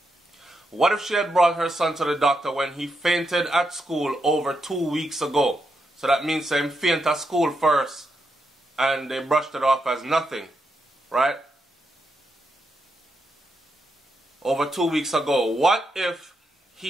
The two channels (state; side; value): normal; both; correlation 0.82